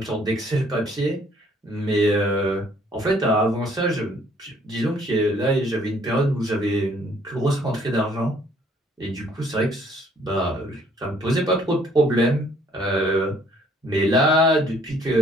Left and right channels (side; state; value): both; normal; correlation 0.62